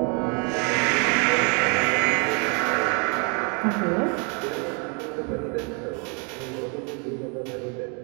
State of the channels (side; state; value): left; quieter; 35.7 dB